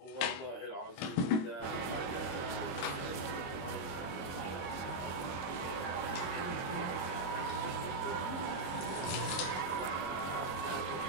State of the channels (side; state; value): right; late; 23 ms